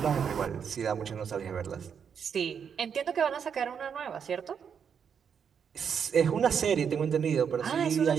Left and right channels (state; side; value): quieter; left; 7.2 dB